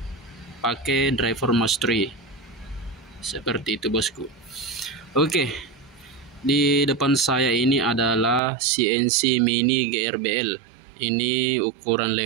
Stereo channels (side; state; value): left; drops out; at 8.4 s